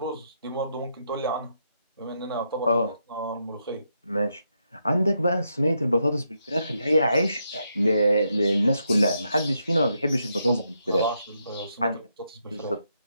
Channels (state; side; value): inverted; both; correlation -0.80